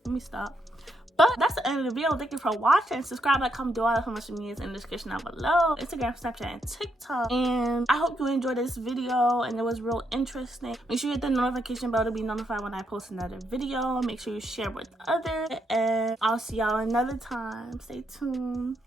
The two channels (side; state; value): both; normal; correlation 0.78